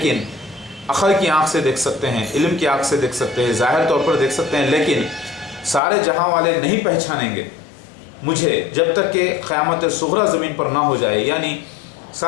अक़ल की आँख से देख सकते हैं, इल्म की आँख से देख सकते हैं, ज़ाहिर तौर पर देख सकते हैं, लेकिन सारे जहां वाले नहीं पहचानेंगे मुझे जब तक कि क़यामत सुग़रा ज़मीन पर ना हो जाए। यानी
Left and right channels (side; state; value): right; drops out; at 5.8 s